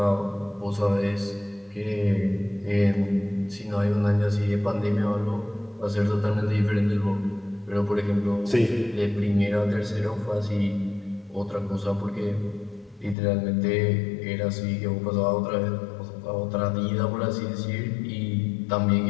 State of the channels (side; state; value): right; drops out; at 13.2 s